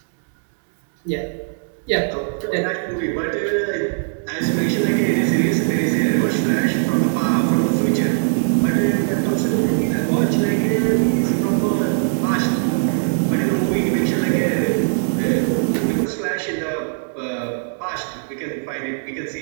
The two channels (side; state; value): left; silent; digital silence